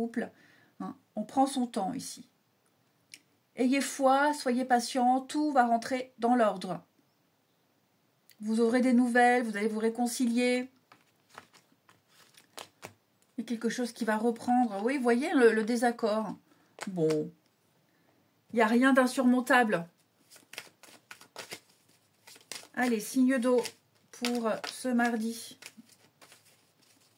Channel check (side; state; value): both; identical; correlation 1.00